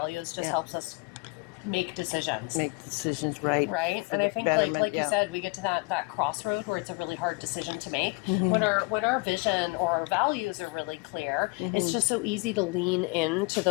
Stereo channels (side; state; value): right; quieter; 28.4 dB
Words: just helps us make decisions. Make decisions right. Right? And I think like you said, we get to that crossroad where it's a really hard decision to make. When our vision or our values are really clear, it's just so easy to lean into